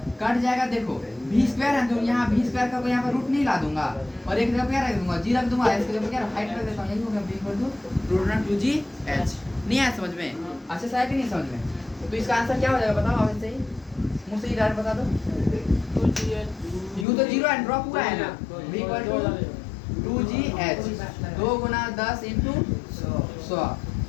कट जाएगा। देखो v स्क्वायर है तो यहाँ v स्क्वायर का यहाँ पर रूट नहीं ला दूंगा और एक जगह क्या रख दूंगा? g रख दूंगा, इसके जगह क्या हाइट रख देता हूँ, यही हो गया v equal to root under 2gh। नहीं आया समझ में? अच्छे से आया कि नहीं समझ में? तो इसका आंसर क्या हो जाएगा बताओ? आप सही मुझे सही डायरेक्ट बता दो। u तो 0 है, ड्रॉप हुआ है ना, v इक्वल टू 2gh, 2 गुना 10 इंटू 100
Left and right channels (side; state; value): right; drops out; at 17.1 s